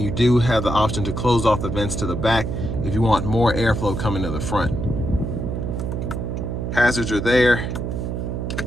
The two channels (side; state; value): right; noise; hum, 3 dB below the sound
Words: do have the option to close off the vents to the back if you want more airflow coming to the front. Hazards are there.